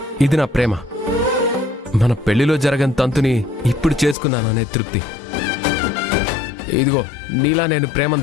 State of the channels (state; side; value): drops out; right; at 4.2 s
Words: ఇది నా ప్రేమ. మన పెళ్లిలో జరగని తంతుని ఇప్పుడు చేసుకున్నాననే తృప్తి. ఇదిగో, నీలా నేను